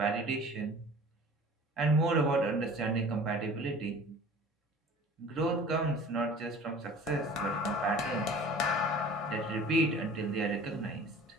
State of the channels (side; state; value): both; normal; correlation 0.45